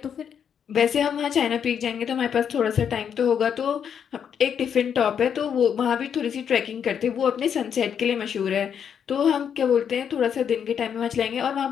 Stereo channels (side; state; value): right; quieter; 7.9 dB